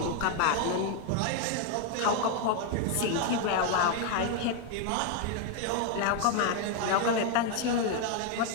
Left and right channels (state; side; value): different; both; correlation 0.01